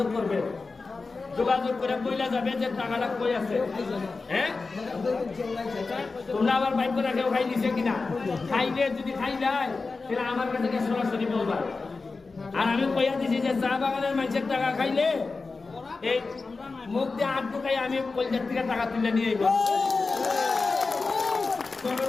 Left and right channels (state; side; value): quieter; right; 4.0 dB